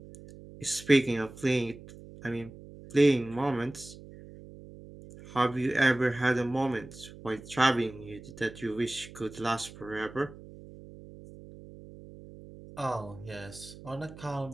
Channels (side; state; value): right; noise; hum, 17 dB below the sound